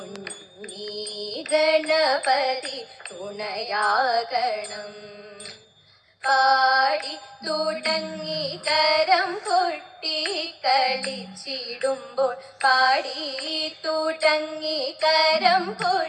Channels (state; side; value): identical; both; correlation 1.00